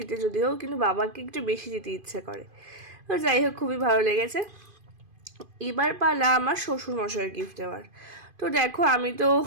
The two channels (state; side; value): late; left; 2.5 ms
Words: যদিও, কিন্তু বাবাকে একটু বেশি দিতে ইচ্ছে করে। তো যাই হোক, খুবই ভালো লেগেছে। এবার পালা আমার শ্বশুরমশাইয়ের গিফট দেওয়ার। তো দেখো আমি তো